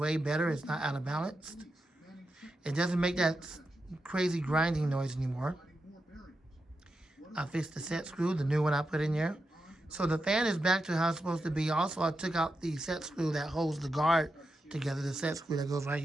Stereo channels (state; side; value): normal; both; correlation 0.88